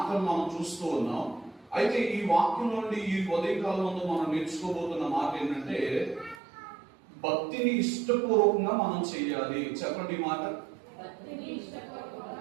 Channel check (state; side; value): drops out; left; at 6.4 s